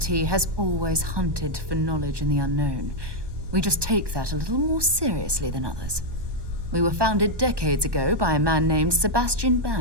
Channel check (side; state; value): left; late; 1.2 ms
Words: has always hunted for knowledge in the unknown. We just take that a little more seriously than others. We were founded decades ago by a man named Sebastian